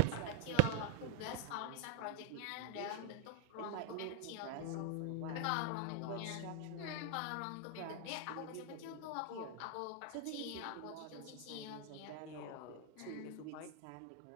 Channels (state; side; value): different; both; correlation 0.00